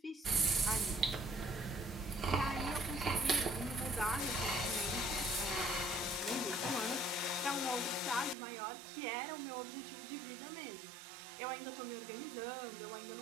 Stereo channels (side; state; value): left; drops out; at 8.3 s